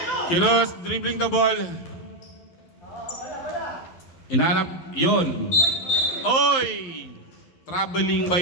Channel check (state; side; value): late; right; 11 ms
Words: Kiros dribbling the ball. Inanap yun. Oy! Traveling